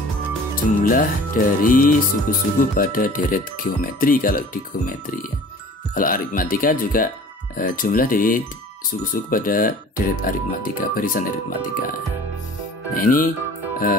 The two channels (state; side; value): normal; both; correlation 0.46